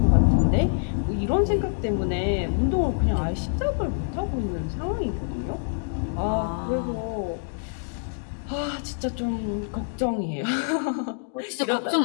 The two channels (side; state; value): right; silent; digital silence